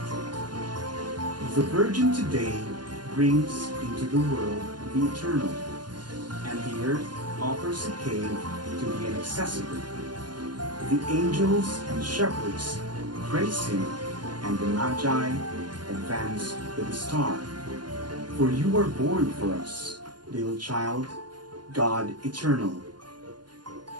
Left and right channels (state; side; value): late; left; 0.70 ms